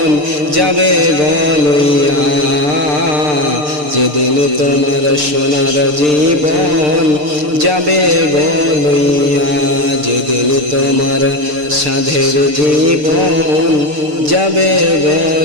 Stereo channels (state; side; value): late; left; 6.7 ms